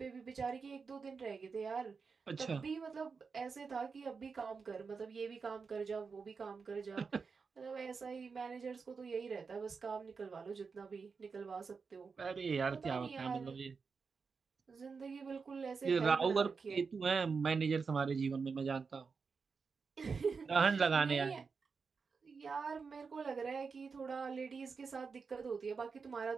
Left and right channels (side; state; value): left; quieter; 5.1 dB